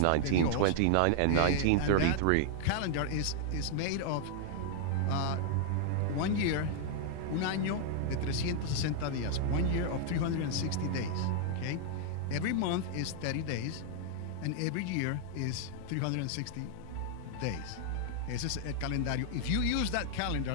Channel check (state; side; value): different; both; correlation 0.00